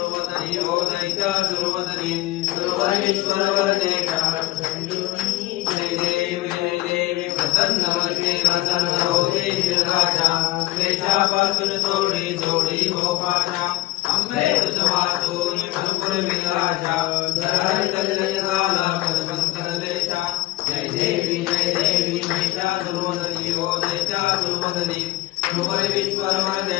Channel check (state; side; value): quieter; right; 18.2 dB